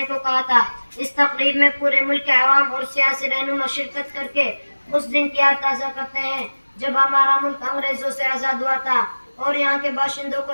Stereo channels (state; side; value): inverted; both; correlation -1.00